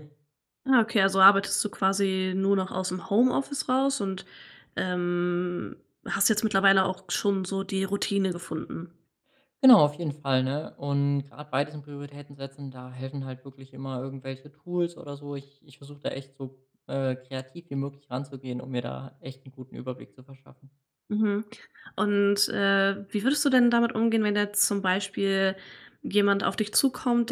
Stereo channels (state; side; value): identical; both; correlation 1.00